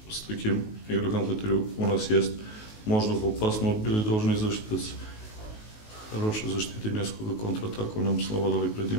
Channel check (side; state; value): right; late; 19 ms